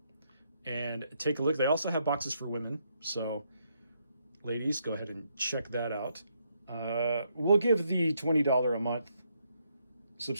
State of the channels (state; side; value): inverted; both; correlation -0.76